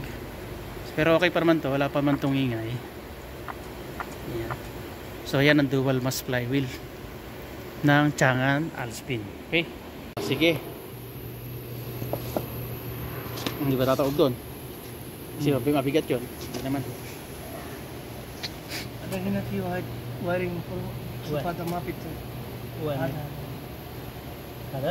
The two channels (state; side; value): identical; both; correlation 1.00